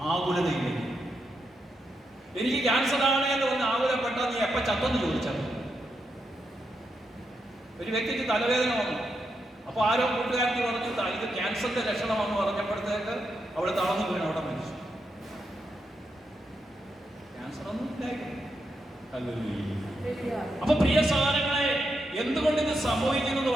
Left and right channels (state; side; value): normal; both; correlation 0.83